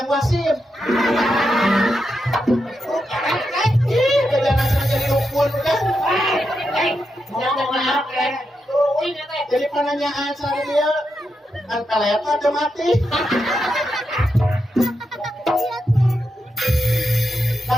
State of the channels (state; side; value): normal; both; correlation 0.85